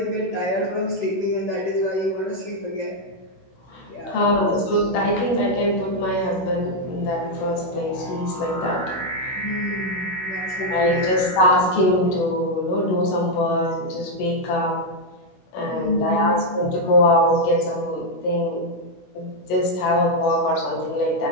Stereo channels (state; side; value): late; right; 16 ms